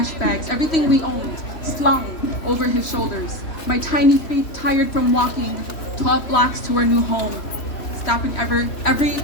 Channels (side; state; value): right; late; 3.1 ms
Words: bags, everything we owned, slung over his shoulders. My tiny feet tired from walking 12 blocks to our new home. Stopping every